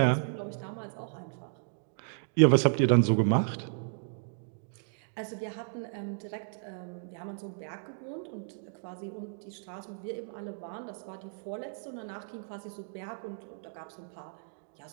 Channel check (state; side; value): silent; left; digital silence